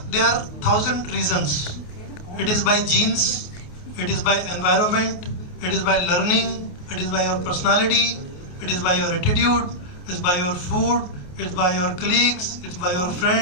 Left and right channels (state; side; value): late; right; 28 ms